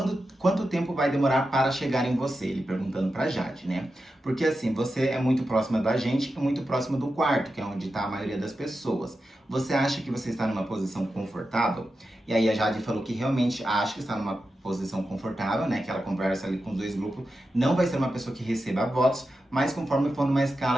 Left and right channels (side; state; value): both; normal; correlation 0.90